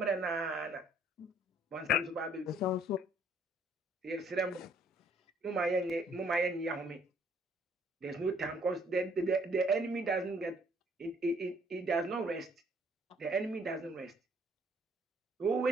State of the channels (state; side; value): normal; both; correlation 0.63